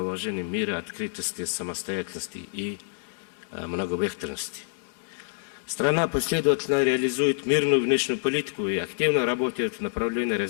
уважении мира, открытости, самостоятельности и многовекторности. Страна последовательно реализует мирную внешнюю политику и активно работает в направлении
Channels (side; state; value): right; silent; 60 dB below the other